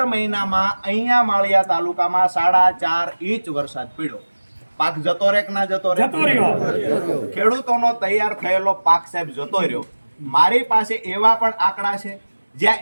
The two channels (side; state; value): both; inverted; correlation -1.00